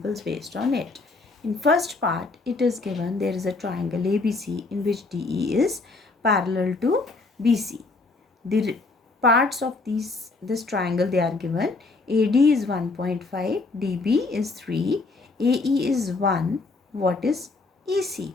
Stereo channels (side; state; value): right; quieter; 3.6 dB